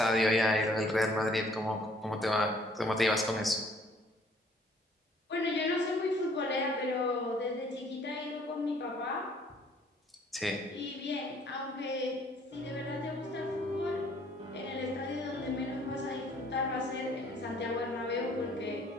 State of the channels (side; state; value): both; normal; correlation 0.60